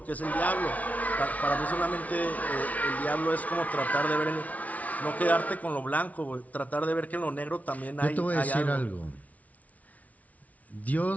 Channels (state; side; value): late; right; 0.070 ms